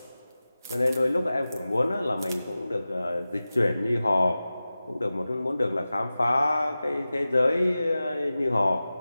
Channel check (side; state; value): both; inverted; correlation -0.96